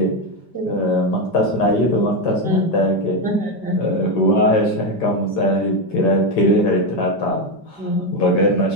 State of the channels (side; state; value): right; late; 5.1 ms